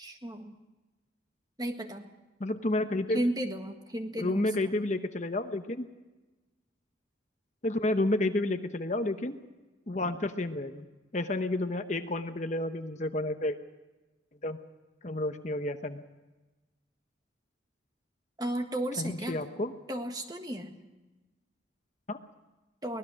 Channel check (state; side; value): normal; both; correlation 0.57